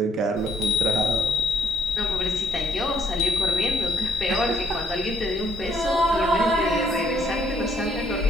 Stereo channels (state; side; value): normal; both; correlation 0.70